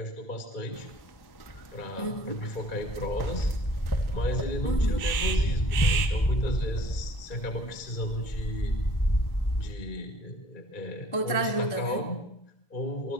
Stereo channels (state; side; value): late; right; 1.4 ms